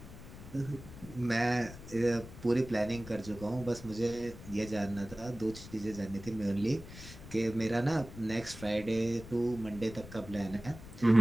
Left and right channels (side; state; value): left; noise; rumble, 15 dB below the sound